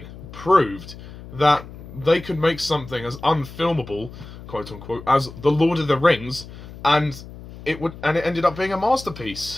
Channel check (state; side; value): noise; left; hum, 15 dB below the sound